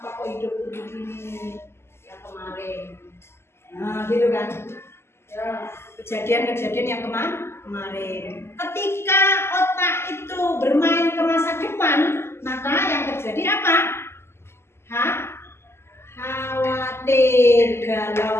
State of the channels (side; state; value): right; late; 0.12 ms